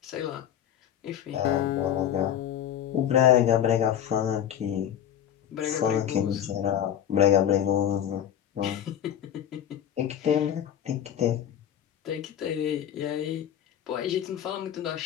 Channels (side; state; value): right; quieter; 10.1 dB